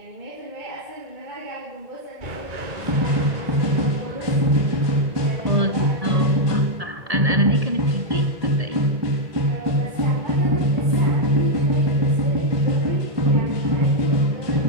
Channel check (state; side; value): late; left; 1.8 ms